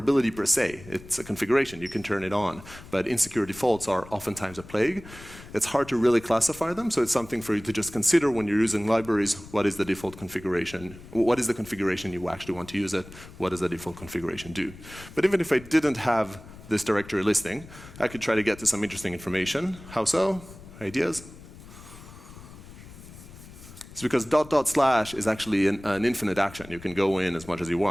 per se. It's a configuration. You can turn it on. But insecure defaults are oftentimes a plague. It's hard to really classify them, so it's something for you to just consider when you're using libraries. What is the default configuration? What is the configuration you actually want to use it? What does the default configuration do? But even if I didn't have this directory listing, I could try to get to some interesting information. How so? Ideas? It's because dot dot slash is actually an infinite action. You can go in as much as you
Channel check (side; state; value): left; noise; rumble, 18 dB below the sound